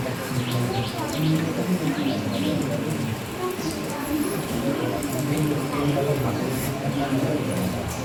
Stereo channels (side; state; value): both; identical; correlation 1.00